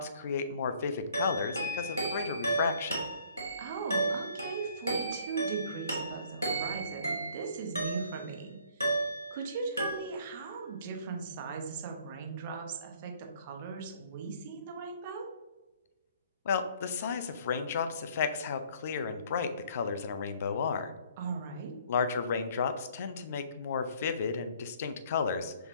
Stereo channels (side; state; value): both; inverted; correlation -0.59